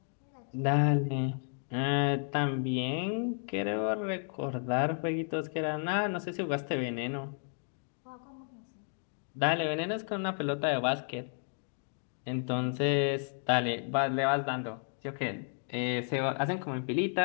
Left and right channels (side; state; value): right; silent; 56 dB below the other